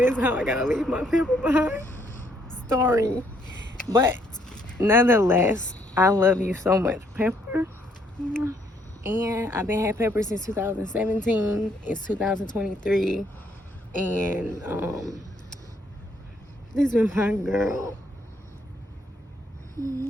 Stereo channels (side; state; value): both; normal; correlation 0.69